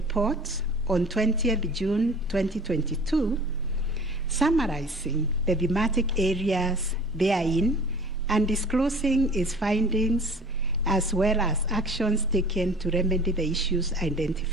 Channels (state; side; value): normal; both; correlation 0.45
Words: on 20th June 2022, summarizing the thematic areas therein and disclosing its findings as well as actions taken to remedy the issues